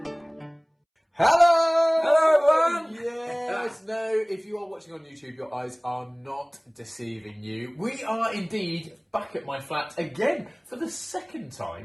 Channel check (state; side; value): identical; both; correlation 1.00